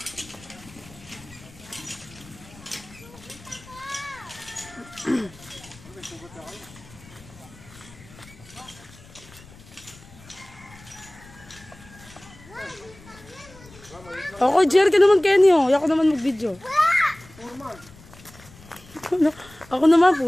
Ako, Jer, ka naman, Kenny, oh. Ako naman mag-video. Ako naman,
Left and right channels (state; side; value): noise; left; rumble, 22 dB below the sound